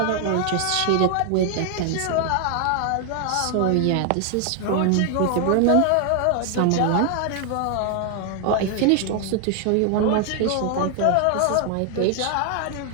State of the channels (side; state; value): both; different; correlation 0.00